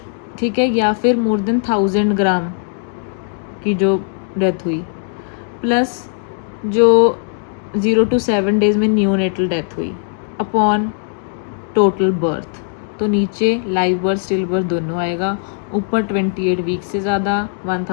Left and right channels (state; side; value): silent; right; digital silence